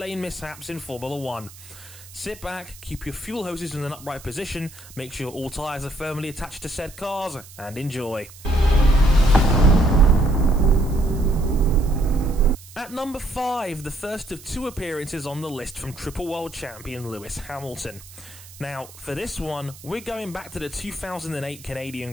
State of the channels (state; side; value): noise; right; hiss, 19 dB below the sound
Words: mishaps in Formula 1. Sit back, keep your fuel hoses in an upright position, make sure all tyres are firmly attached to said cars, and enjoy. At number 5, the first of two appearances on the list from Triple World Champion Lewis Hamilton. Now, for this one, we're going back to the 2008 Canadian